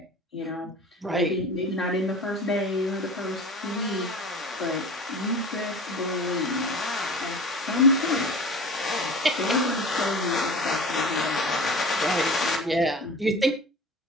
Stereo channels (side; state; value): both; normal; correlation 0.37